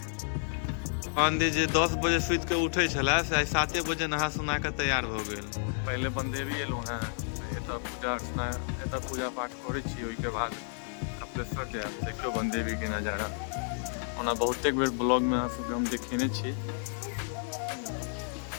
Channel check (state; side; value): silent; right; 57 dB below the other